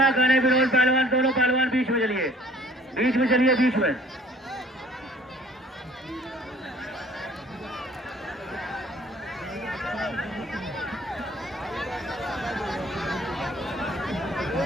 करें विनोद पहलवान, दोनों पहलवान बीच में चलिए, बीच में चलिए, बीच में।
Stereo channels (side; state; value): both; normal; correlation 0.54